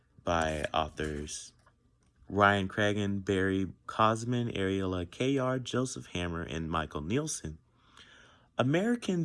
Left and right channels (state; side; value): identical; both; correlation 1.00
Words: by authors Ryan Cragen, Barry Cosman, Ariella Kayar, Joseph Hammer, and Michael Nielsen,